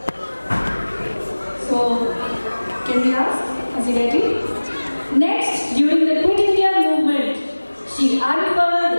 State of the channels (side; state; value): both; inverted; correlation -1.00